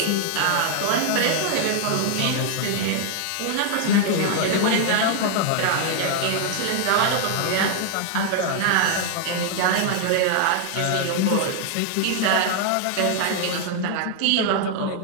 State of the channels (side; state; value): both; different; correlation 0.00